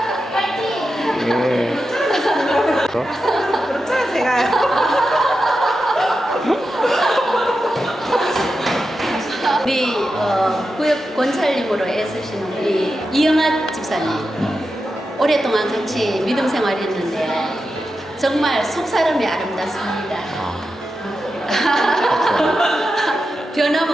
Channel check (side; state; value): both; normal; correlation 0.90